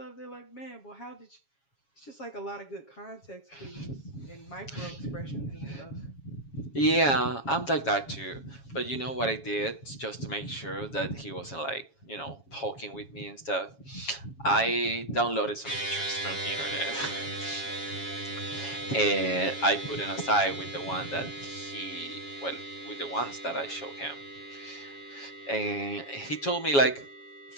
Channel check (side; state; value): right; late; 7.3 ms